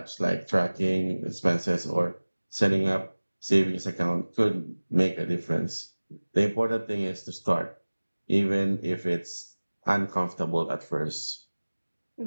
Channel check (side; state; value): both; inverted; correlation -1.00